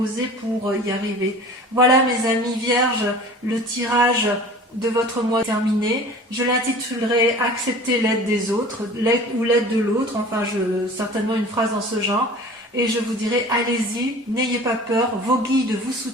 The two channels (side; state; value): both; normal; correlation 0.42